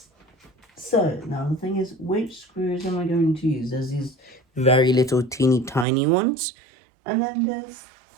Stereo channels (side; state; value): left; drops out; at 5.9 s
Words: So now the thing is, which screws am I going to use? There's these very little teeny tiny ones, and then there's